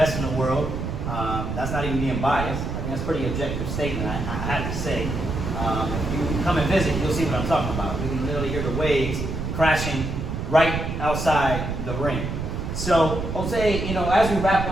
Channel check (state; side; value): noise; right; rumble, 4 dB below the sound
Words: in the world. That's not even being biased. I think that's a pretty objective statement, I have to say. If you come and visit, you'll see what I'm talking about. We can literally hear the waves crashing right outside the ring. So, Jose, as we wrap